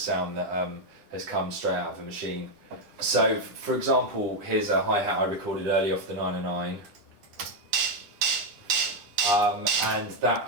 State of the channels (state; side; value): late; left; 9.9 ms